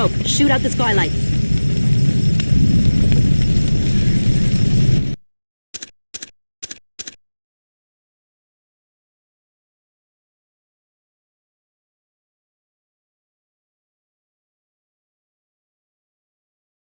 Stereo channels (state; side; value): inverted; both; correlation -1.00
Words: Shoot out the skylights.